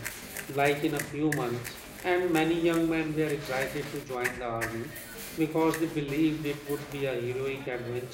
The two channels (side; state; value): both; identical; correlation 1.00